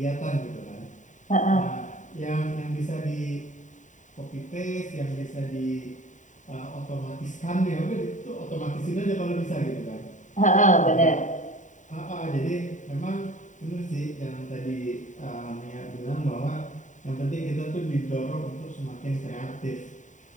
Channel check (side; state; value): right; late; 0.36 ms